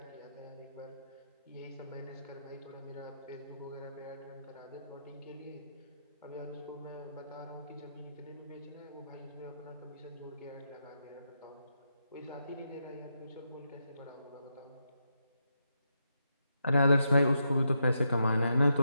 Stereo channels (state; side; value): inverted; both; correlation -0.83